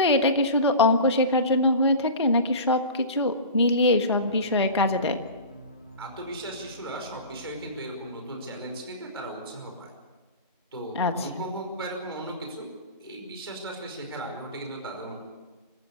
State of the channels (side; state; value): both; inverted; correlation -0.34